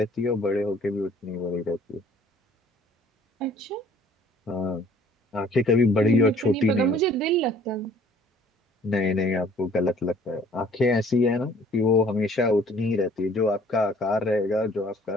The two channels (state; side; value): normal; both; correlation 0.55